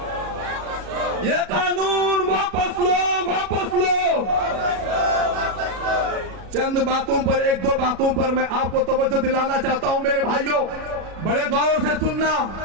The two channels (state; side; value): late; left; 37 ms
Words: یہ قانون واپس لو، واپس لو۔ چند باتوں پر، ایک دو باتوں پر میں آپ کو توجہ دلانا چاہتا ہوں میرے بھائیوں، بڑے غور سے سننا۔